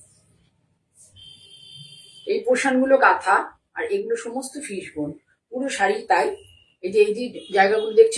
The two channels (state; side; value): identical; both; correlation 1.00